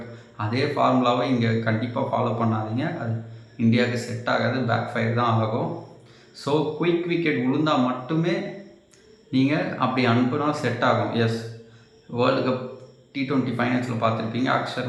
அதே ஃபார்முலாவை இங்கே கண்டிப்பாக ஃபாலோ பண்ணாதீங்க. அது இந்தியாவுக்கு செட் ஆகாது, பேக் ஃபயர் தான் ஆகும். ஸோ குயிக் விக்கெட் விழுந்தால் மட்டுமே நீங்கள் அப்படி அனுப்புனா செட் ஆகும். எஸ், வேர்ல்டு கப் T20 ஃபைனல்ஸில் பார்த்துருப்பீங்க,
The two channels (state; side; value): identical; both; correlation 1.00